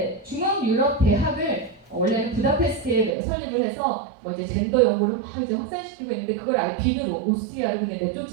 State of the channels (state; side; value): drops out; left; at 3.2 s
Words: 중앙 유럽 대학을 원래는 부다페스트에 설립을 해서 뭐 이제 젠더 연구를 막 이제 확산시키고 있는데 그걸 아예 비누로 오스트리아로 그냥